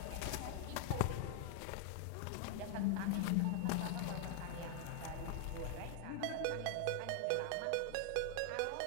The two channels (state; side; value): different; both; correlation 0.00